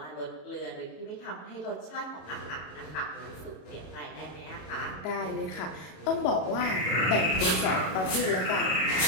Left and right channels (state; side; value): late; right; 34 ms